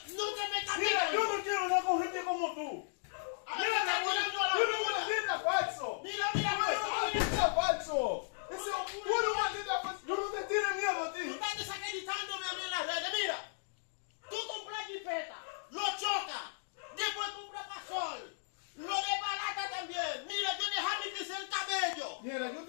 no te metas. Mira, yo no quiero hablar con gente como tú. Mira, falso. Mira, mira, Mira, falso. Ese puro maldita falso. Yo no te tiene miedo a tú ti. estás desacreditándome a mí en las redes. Mira, tú compras jipeta, lo chocas, después compras pasol, lo de balata también. Mira, yo dejé mi crecer el cabello. Mira, yo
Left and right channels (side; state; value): right; silent; digital silence